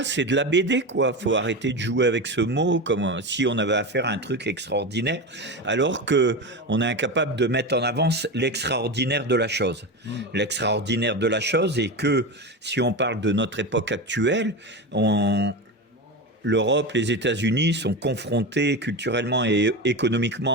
c'est de la BD, quoi. Faut arrêter de jouer avec ce mot comme si on avait affaire à un truc extraordinaire, alors que on est incapable de mettre en avant l'extraordinaire de la chose. L'extraordinaire de la chose est que, si on parle de notre époque actuelle, l'Europe, les États-Unis sont confrontés culturellement et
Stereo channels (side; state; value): both; normal; correlation 0.21